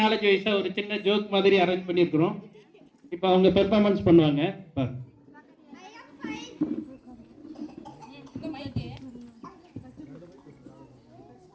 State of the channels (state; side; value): identical; both; correlation 1.00